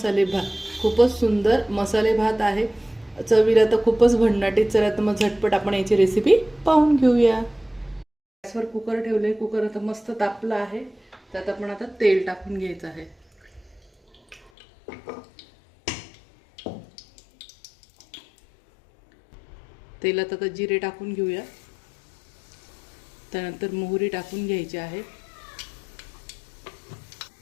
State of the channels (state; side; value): drops out; right; at 14.5 s